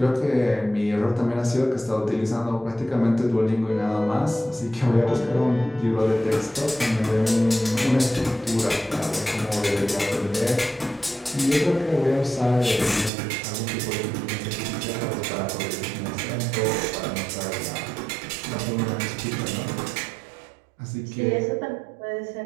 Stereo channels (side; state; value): left; drops out; at 13.1 s